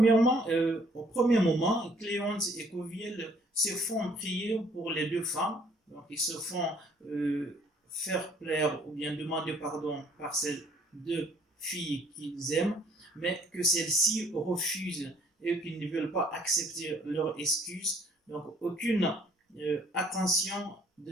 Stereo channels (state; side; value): normal; both; correlation 0.60